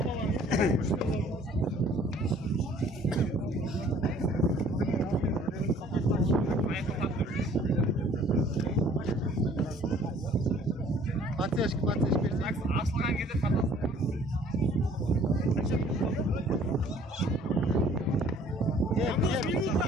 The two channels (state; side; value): normal; both; correlation 0.55